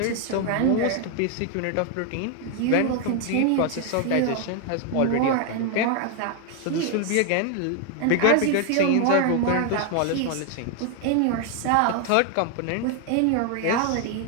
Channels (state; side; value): different; both; correlation 0.01